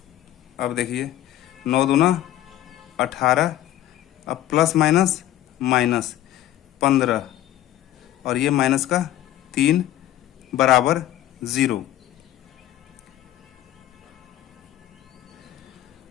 अब देखिए 9 दूना 18, अब प्लस माइनस माइनस 15 और ये माइनस का 3 बराबर 0।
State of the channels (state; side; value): quieter; right; 13.2 dB